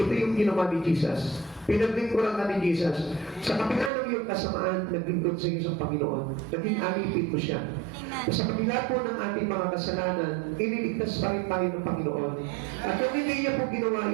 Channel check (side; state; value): left; drops out; at 3.9 s